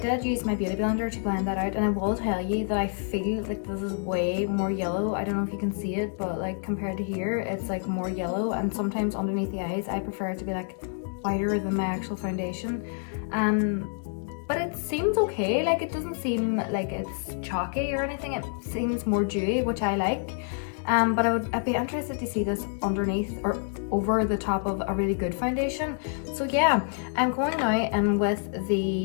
use my beauty blender to blend that out, and I will tell you that I feel like this is way more yellow. I don't know if you can see it, but like compared to here, it's like more yellow, and sometimes underneath the eyes, I prefer it to be like whiter than my actual foundation. But it seems okay. Like, it doesn't seem like it's chalky or anything. It seems more dewy, which I like. But I'd be interested to see this underneath or over the top of a really good foundation. So yeah, I'm going now in with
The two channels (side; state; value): right; silent; 58 dB below the other